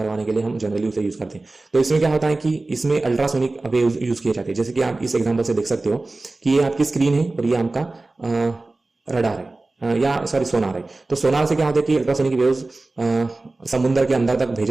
के लिए हम जनरली उसे यूज करते हैं। तो इसमें क्या होता है कि इसमें अल्ट्रासोनिक वेव्स यूज किए जाते हैं। जैसे कि आप इस एग्जाम्पल से देख सकते हो कि ये आपकी स्क्रीन है और ये आपका रडार है, या सॉरी सोनार है। तो सोनार से क्या होता है कि अल्ट्रासोनिक वेव्स समुद्र के अंदर तक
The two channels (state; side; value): quieter; left; 3.2 dB